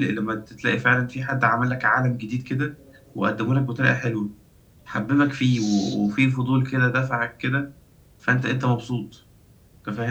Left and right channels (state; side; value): identical; both; correlation 1.00